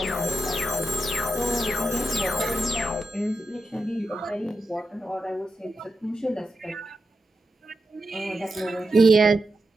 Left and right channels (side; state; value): both; normal; correlation 0.88